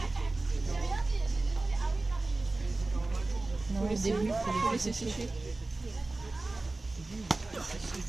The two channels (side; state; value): left; quieter; 3.2 dB